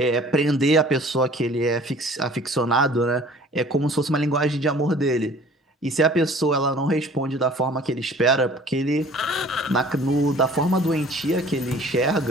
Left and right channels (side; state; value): both; normal; correlation 0.50